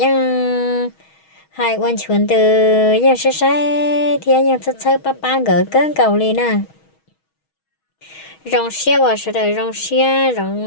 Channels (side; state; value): right; late; 6.3 ms